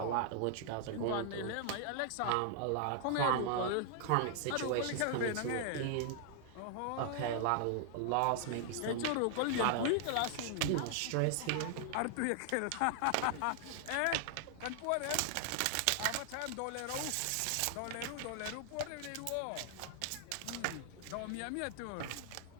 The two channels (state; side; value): different; both; correlation 0.00